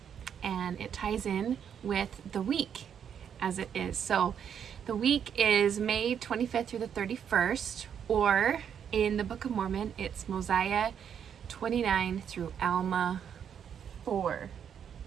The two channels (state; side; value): quieter; left; 8.3 dB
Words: and it ties in with the week as it is. So the week is May 25th through the 31st, or in the Book of Mormon, it's Mosiah 29 through Alma 4.